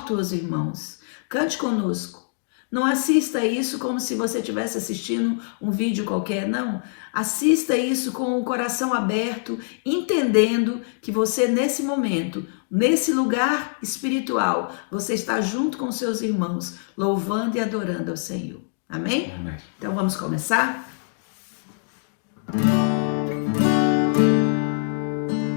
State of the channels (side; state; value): right; silent; digital silence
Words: os irmãos, cante conosco. Não assista isso como se você estivesse assistindo um vídeo qualquer, não. Assista isso com o coração aberto, entendendo que você nesse momento, nesse lugar espiritual, você está junto com seus irmãos, louvando e adorando ao Senhor. Amém? Amém. Então vamos começar?